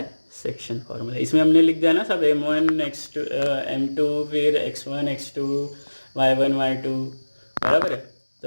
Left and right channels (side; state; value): both; inverted; correlation -1.00